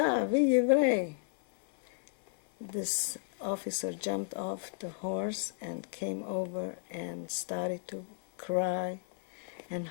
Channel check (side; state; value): right; silent; 56 dB below the other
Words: еврей." This officer jumped off the horse and came over and started to cry and